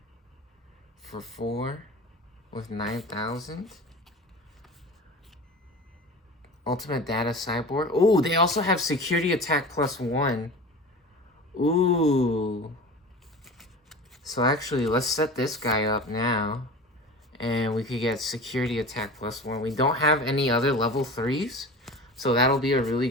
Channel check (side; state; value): both; normal; correlation 0.34